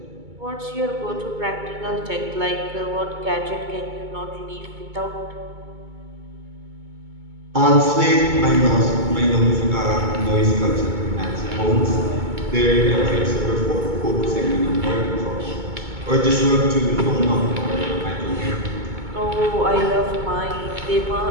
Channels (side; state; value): left; late; 2.2 ms